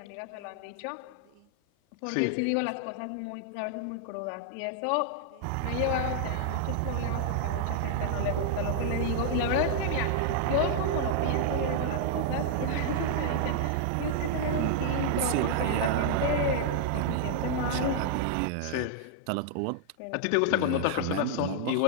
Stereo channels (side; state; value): both; different; correlation -0.01